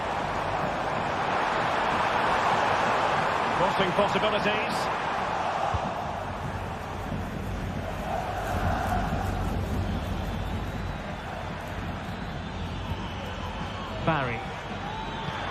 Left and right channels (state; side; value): identical; both; correlation 1.00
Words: Crossing possibilities. Barry.